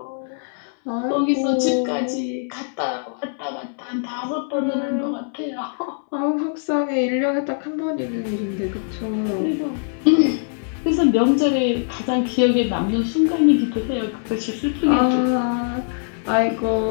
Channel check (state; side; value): silent; right; digital silence